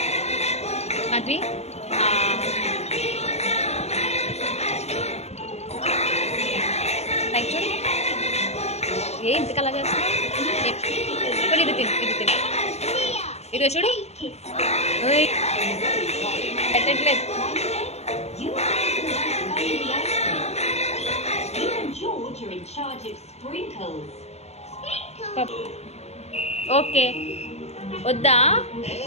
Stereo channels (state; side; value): late; right; 0.31 ms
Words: మాధవి లైక్ చూడు ఏ ఇంతకలా చేస్తున్నావు. ఇప్పుడు ఇది తిను ఇది తిను ఇది చూడు ఓయ్ పెట్టట్లేదు. ఓకే వద్దా